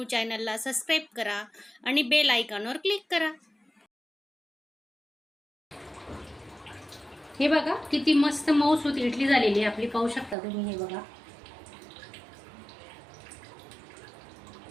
चॅनलला सबस्क्राईब करा आणि बेल आयकॉनवर क्लिक करा। हे बघा किती मस्त मऊसूत इडली झालेली आहे आपली, पाहू शकता तुम्ही। हे बघा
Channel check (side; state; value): left; drops out; at 10.4 s